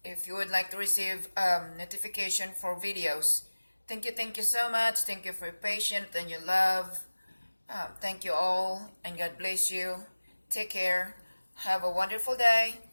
if you would like to receive notification for videos. Thank you so much. Thank you for your patience and your love. Thank you all, and God bless you. Take care. Have a wonderful day.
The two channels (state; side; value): inverted; both; correlation -1.00